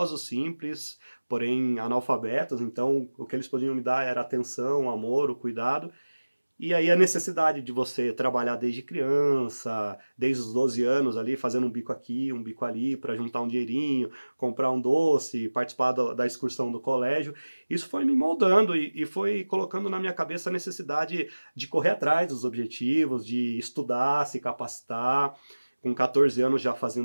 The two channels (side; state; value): both; inverted; correlation -1.00